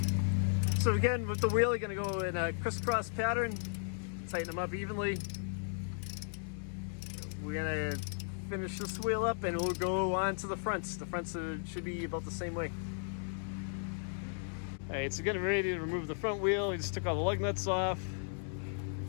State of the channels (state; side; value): silent; right; digital silence